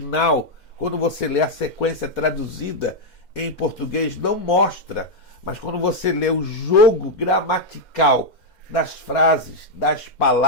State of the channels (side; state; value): right; late; 2.1 ms